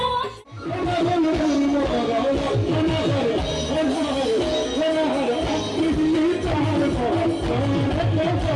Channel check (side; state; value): both; identical; correlation 1.00